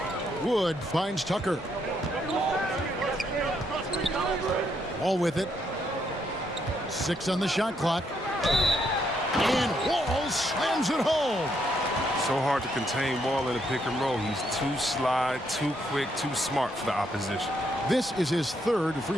Wood finds Tucker. Wall with it. 6 on the shot clock. And Wall slams it home. So hard to contain Wall in a pick and roll. He's too sly, too quick, too smart for the opposition. This is his 3rd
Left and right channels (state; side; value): normal; both; correlation 0.75